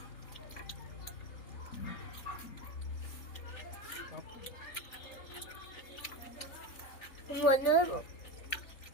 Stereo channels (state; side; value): late; right; 3.4 ms